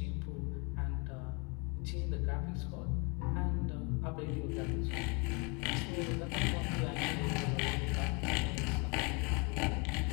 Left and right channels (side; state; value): right; quieter; 31.1 dB